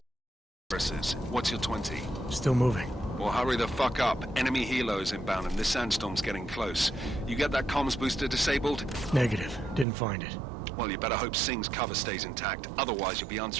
positions. What's your 20? Still moving. Well, hurry the fuck up. Enemy helos inbound and this sandstorm's getting close. You get that comms booster disabled? Negative. Didn't find it. Well, you better hope Singh's cover stays intact. Otherwise, you'll be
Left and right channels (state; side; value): drops out; left; at 9.9 s